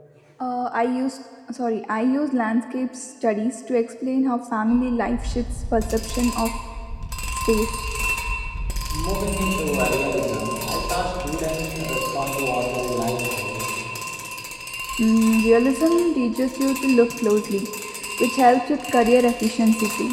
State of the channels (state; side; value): identical; both; correlation 1.00